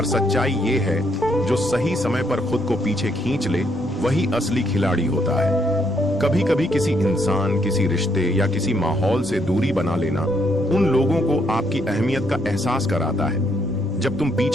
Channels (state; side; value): normal; both; correlation 0.73